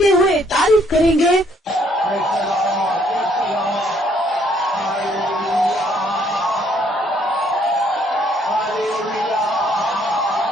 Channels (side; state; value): both; normal; correlation 0.66